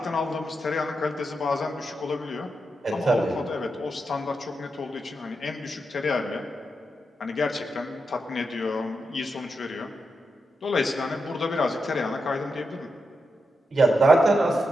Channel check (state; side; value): normal; both; correlation 0.86